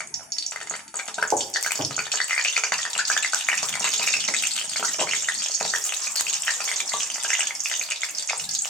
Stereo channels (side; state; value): both; normal; correlation 0.43